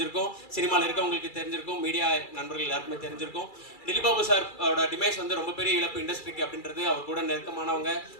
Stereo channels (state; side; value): late; right; 2.3 ms